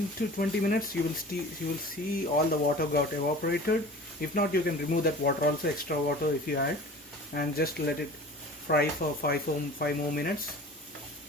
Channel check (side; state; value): both; normal; correlation 0.41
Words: to 20 minutes you will see all the water got evaporated. If not, you can remove that water also, extra water if you add, and just let it fry for 5 more minutes.